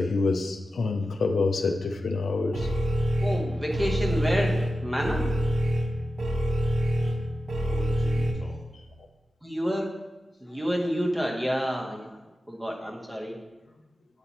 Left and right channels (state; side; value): normal; both; correlation 0.92